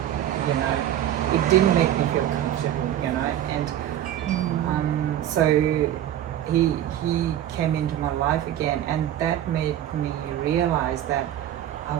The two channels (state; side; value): quieter; left; 11.6 dB